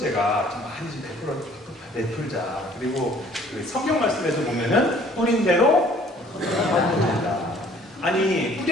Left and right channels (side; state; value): both; normal; correlation 0.56